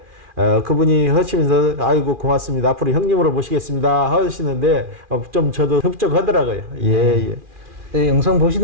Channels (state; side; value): late; left; 2.4 ms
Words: 그분이 하시면서 아이고 고맙습니다. 앞으로 형님으로 모시겠습니다 하시는데 좀 저도 흡족하더라고요. 예, 예. 네, 영상